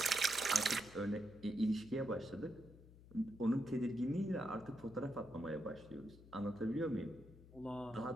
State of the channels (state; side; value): noise; left; hum, 20 dB below the sound